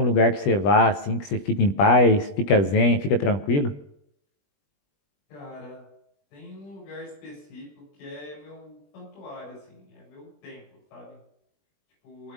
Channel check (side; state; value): right; late; 20 ms